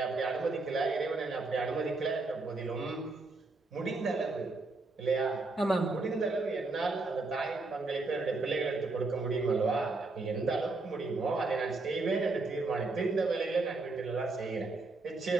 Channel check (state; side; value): quieter; left; 3.5 dB